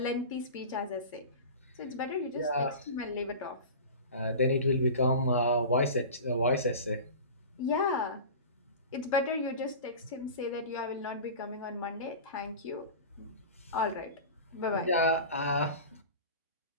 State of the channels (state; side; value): inverted; both; correlation -0.33